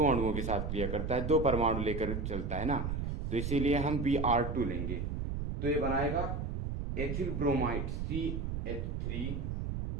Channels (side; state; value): right; noise; rumble, 2 dB below the sound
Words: अणुओं के साथ क्रिया करता है, दो परमाणु लेकर चलता है ना, तो इसीलिए हम Br2 लेंगे। तो ये बनाएगा एथिल ब्रोमाइड